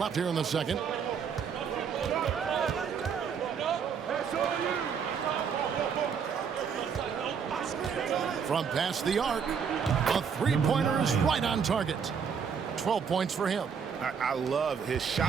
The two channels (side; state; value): left; quieter; 6.7 dB